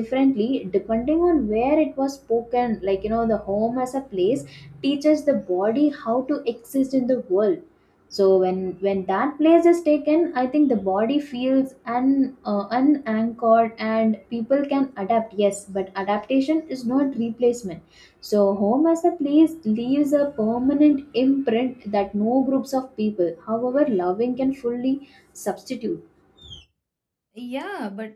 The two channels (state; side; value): identical; both; correlation 1.00